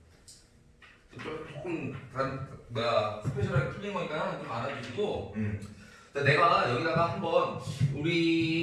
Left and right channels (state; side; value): identical; both; correlation 1.00